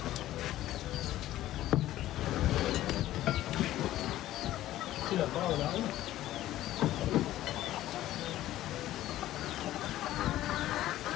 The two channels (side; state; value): right; quieter; 14.3 dB